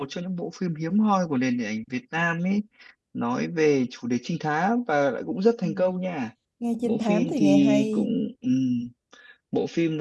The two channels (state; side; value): identical; both; correlation 1.00